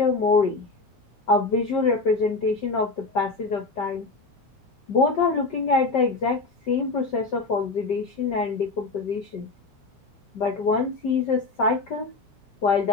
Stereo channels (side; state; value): right; quieter; 3.7 dB